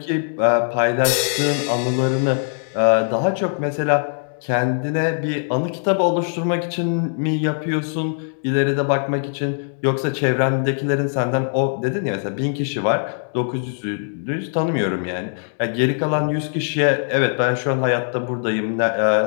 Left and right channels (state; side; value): silent; right; digital silence